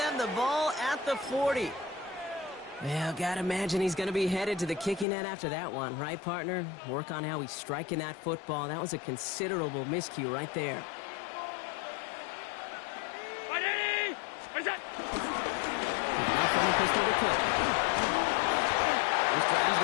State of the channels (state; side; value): drops out; right; at 5.1 s